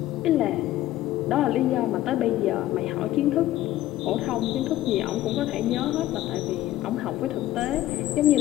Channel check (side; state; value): right; quieter; 14.6 dB